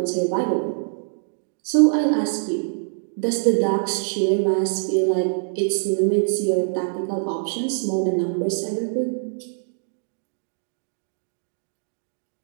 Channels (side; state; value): left; silent; digital silence